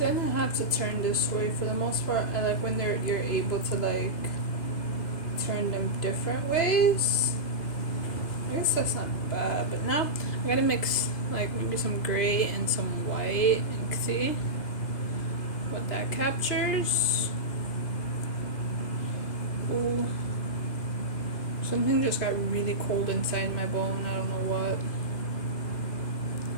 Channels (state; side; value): late; right; 2.0 ms